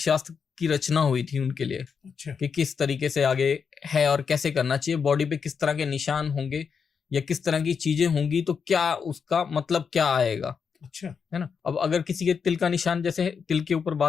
शास्त्र की रचना हुई थी उनके लिए। अच्छा। कि किस तरीके से आगे है और कैसे करना चाहिए, बॉडी पे किस तरह के निशान होंगे या किस तरह की चीजें होंगी तो क्या उसका मतलब क्या आएगा। अच्छा। है ना। अब अगर किसी के तिल का निशान, जैसे तिल के ऊपर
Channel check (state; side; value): quieter; right; 6.2 dB